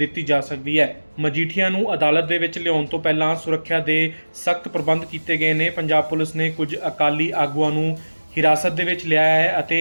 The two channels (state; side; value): inverted; both; correlation -1.00